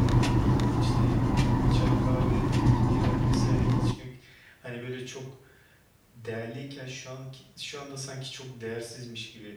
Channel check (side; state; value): both; identical; correlation 1.00